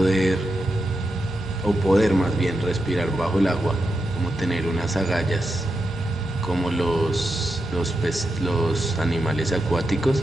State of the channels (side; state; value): both; normal; correlation 0.87